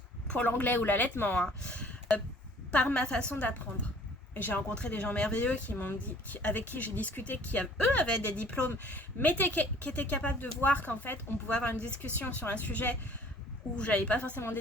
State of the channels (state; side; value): normal; both; correlation 0.54